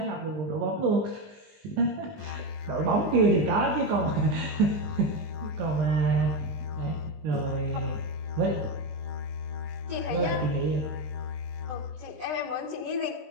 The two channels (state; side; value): late; left; 19 ms